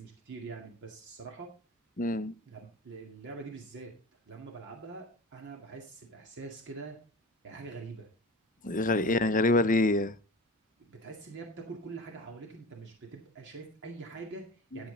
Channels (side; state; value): both; normal; correlation 0.34